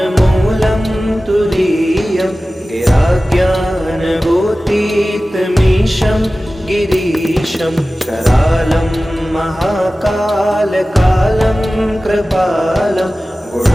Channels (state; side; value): normal; both; correlation 0.96